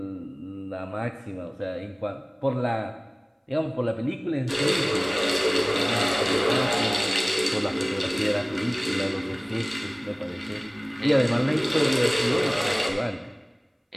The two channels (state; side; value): identical; both; correlation 1.00